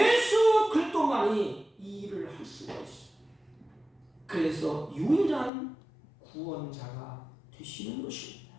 그리스도만이 이 일을 할 수가 있어요. 그래서 유일한 구원자가 되시는 것입니다.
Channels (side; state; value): right; drops out; at 5.5 s